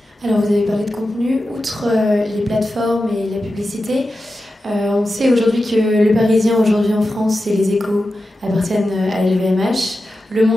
Alors vous avez parlé de contenu, outre les plateformes et la publicité, on sait aujourd'hui que Le Parisien aujourd'hui en France et Les Échos appartiennent à LVMH, Le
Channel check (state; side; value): normal; both; correlation 0.92